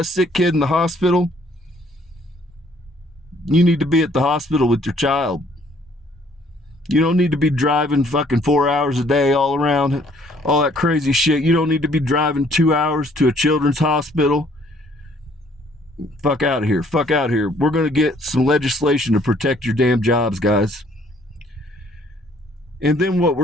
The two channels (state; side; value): normal; both; correlation 0.62